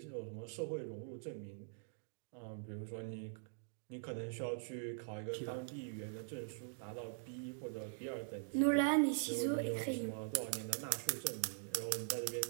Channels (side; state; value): left; silent; digital silence